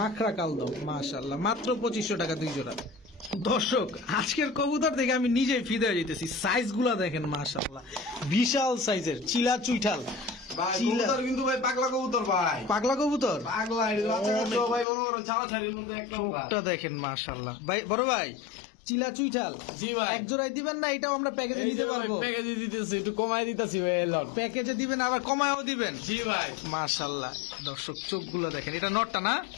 কালদম। মাশাআল্লাহ, মাত্র 2500 টাকা দুই জোড়া। দর্শক আজকের কবুতর দেখে আমি নিজেই ফিদে হয়ে যেতেছি। সাইজ গুলা দেখেন মাশাআল্লাহ, বিশাল সাইজের চিলা চুইঠাল। ভাই চিলা। কবুতর কিন্তু ভাই পাগলা কবুতর ভাই। পাগলা কবুতর? পাগলা এটা বাচ্চা কাচ্চা ভাই মনে করো ছাড়াছাড়ির মধ্যে একদম ভাই। চোখটা দেখেন মাশাআল্লাহ। ভাই বড় ভাই, চিলা চুইঠাল জি ভাই। এক জোড়ায় দিবেন না? এটাও আমরা প্যাকেজে নিতে পারবো? প্যাকেজে দিতেছি, একটু কমাই দিতেছি ভাই। এলাম প্যাকেজে দিবেন আবার কমায়ও দিবেন? জি ভাই। মাশাআল্লাহ। দর্শক চোখগুলো দেখেন, এটা নটটা না?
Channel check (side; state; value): right; drops out; at 14.9 s